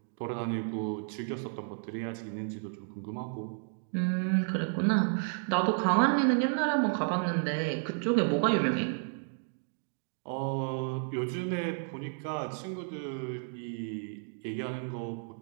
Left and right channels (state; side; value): silent; left; 56 dB below the other